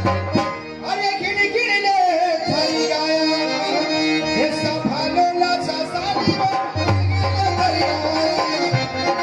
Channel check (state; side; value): identical; both; correlation 1.00